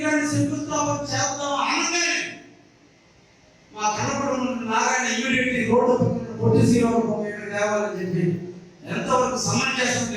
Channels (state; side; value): identical; both; correlation 1.00